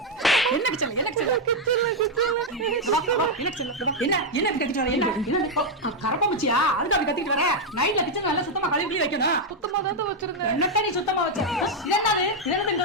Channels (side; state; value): both; normal; correlation 0.01